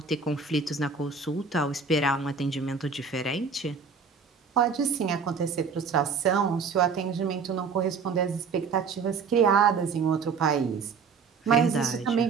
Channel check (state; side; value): quieter; left; 5.5 dB